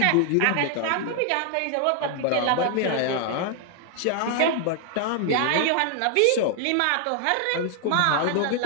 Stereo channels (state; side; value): different; both; correlation 0.00